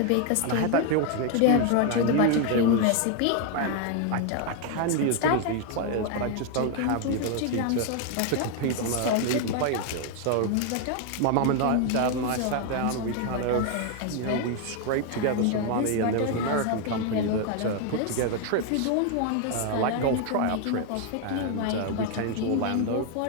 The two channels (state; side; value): different; both; correlation 0.00